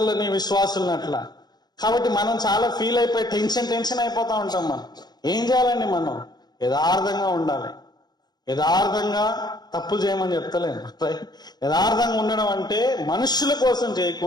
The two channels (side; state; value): right; late; 0.20 ms